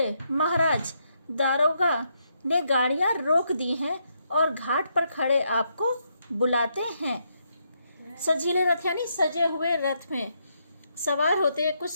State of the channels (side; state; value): both; inverted; correlation -0.77